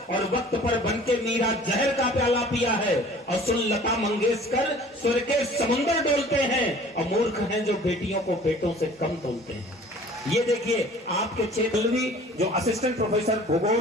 और वक्त पर बनके मीरा जहर का प्याला पिया है और सुन लता मंगेशकर स्वर के समुंदर डोलते हैं, और मूर्ख हैं जो बेटियों को बेटों से कम तोलते हैं। ये देखिए आपके क्षेत्र जो असिस्टेंट प्रोफेसर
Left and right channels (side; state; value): both; normal; correlation 0.49